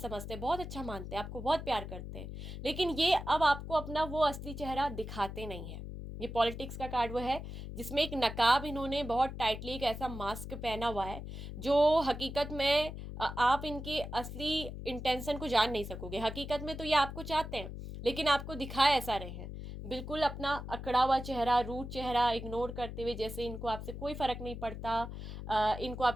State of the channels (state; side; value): noise; left; hum, 9 dB below the sound